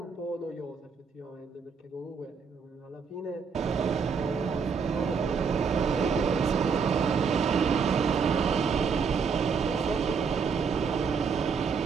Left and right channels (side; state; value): left; quieter; 5.8 dB